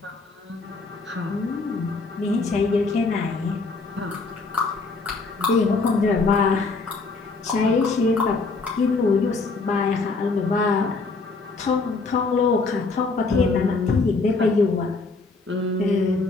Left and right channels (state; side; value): quieter; right; 3.9 dB